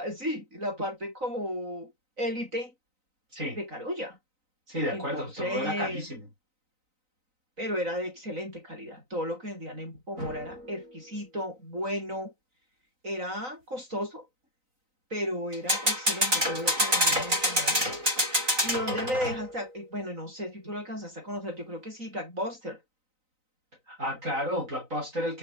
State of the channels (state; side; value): late; left; 3.9 ms